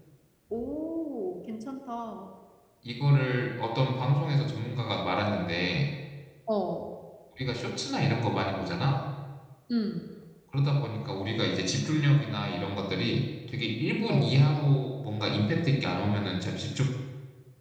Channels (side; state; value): both; identical; correlation 1.00